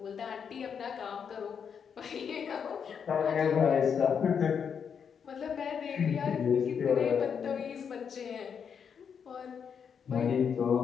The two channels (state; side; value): quieter; right; 7.1 dB